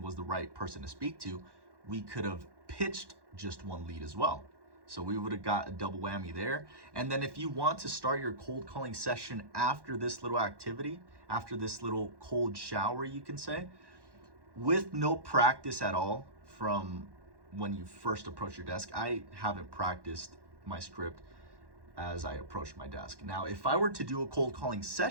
was the right person to speak to, we could have pitched just one lead as well. So we would have got a double whammy there. And then if you want to start your cold calling session after this little activity, after this little cold shower, you can say, with no practice at all from when you first approach your desk. I haven't practiced my script as I approached my desk. Now, if I were to do a cold calling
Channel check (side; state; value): left; late; 1.1 ms